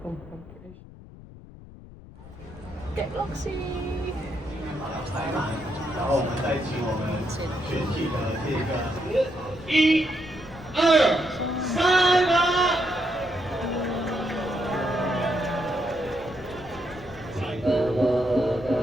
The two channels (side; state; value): left; noise; rumble, 18 dB below the sound